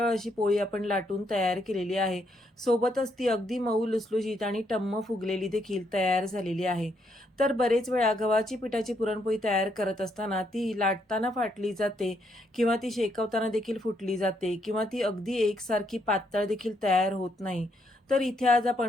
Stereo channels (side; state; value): both; normal; correlation 0.75